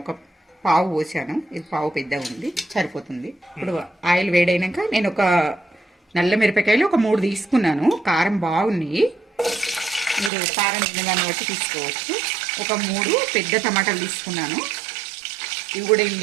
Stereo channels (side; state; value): left; drops out; at 10.3 s